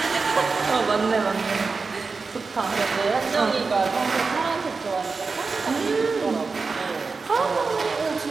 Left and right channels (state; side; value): quieter; left; 4.4 dB